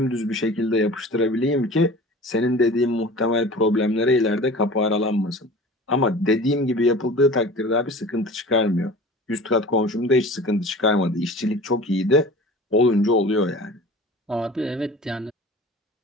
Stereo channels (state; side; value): normal; both; correlation 0.40